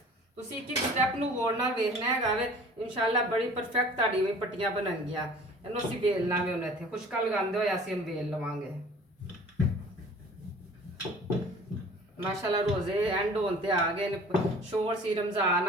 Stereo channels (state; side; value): normal; both; correlation 0.47